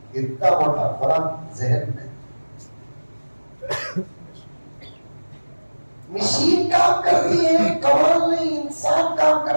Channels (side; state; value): both; inverted; correlation -1.00